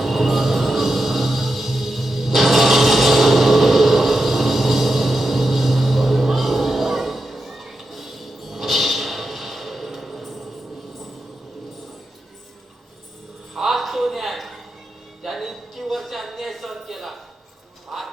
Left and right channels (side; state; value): both; normal; correlation 0.88